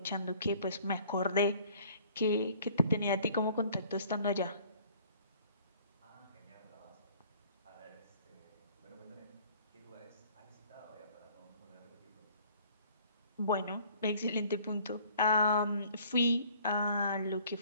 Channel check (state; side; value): inverted; both; correlation -0.55